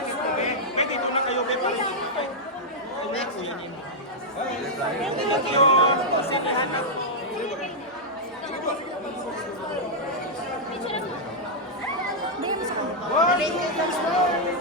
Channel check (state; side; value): normal; both; correlation -0.05